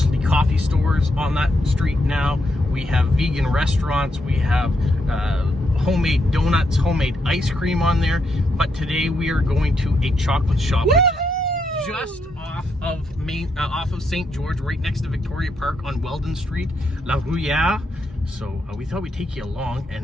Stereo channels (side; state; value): both; normal; correlation 0.79